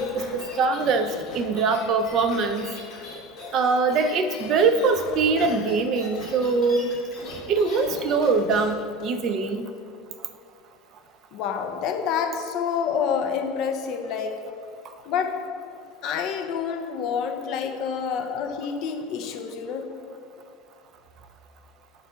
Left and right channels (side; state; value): both; normal; correlation 0.31